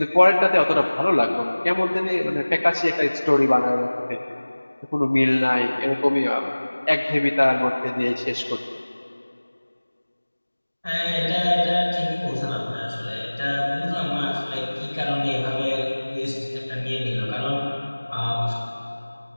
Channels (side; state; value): both; inverted; correlation -1.00